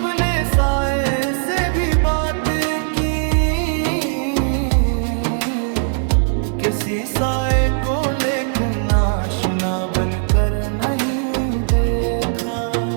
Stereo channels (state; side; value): silent; left; 61 dB below the other